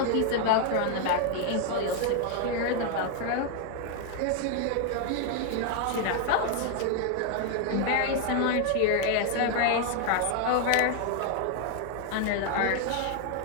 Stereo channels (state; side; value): different; both; correlation 0.00